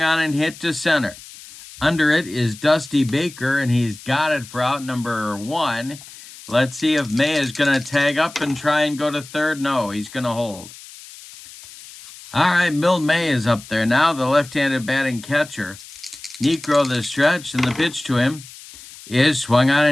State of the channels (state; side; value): noise; left; hiss, 18 dB below the sound